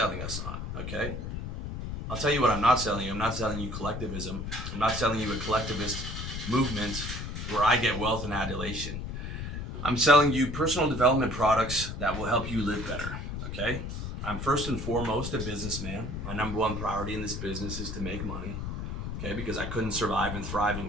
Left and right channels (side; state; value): left; noise; rumble, 5 dB below the sound